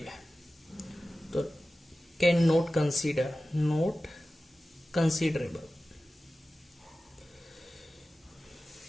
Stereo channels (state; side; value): normal; both; correlation 0.95